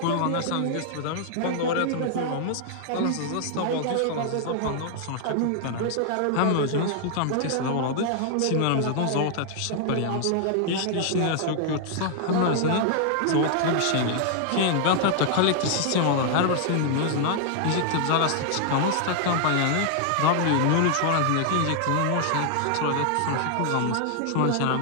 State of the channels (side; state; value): both; different; correlation 0.00